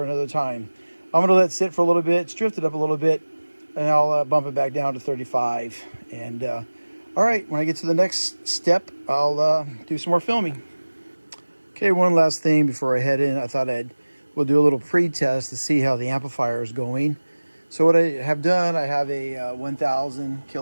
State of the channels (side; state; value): both; inverted; correlation -1.00